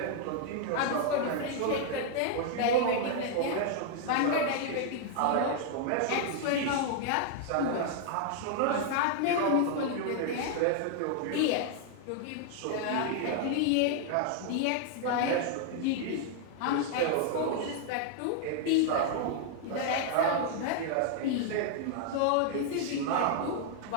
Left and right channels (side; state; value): both; different; correlation 0.00